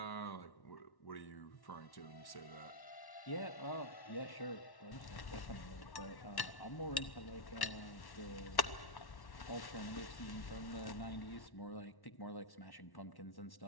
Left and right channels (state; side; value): late; right; 1.1 ms